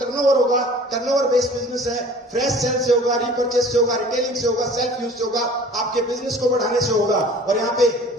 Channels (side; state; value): both; normal; correlation 0.47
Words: होगा, टर्नओवर बेस्ड बिजनेस है, फ्रेश सेल से होगा, रिपर्चेस से होगा, रिटेलिंग से होगा, सेल्फ यूज से होगा, आपके बिजनेस को बढ़ाने से होगा। और यहाँ पे